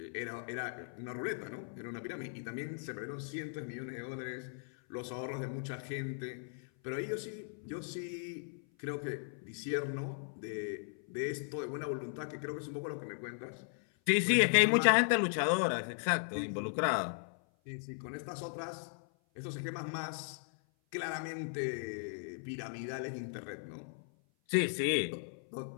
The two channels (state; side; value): silent; right; 53 dB below the other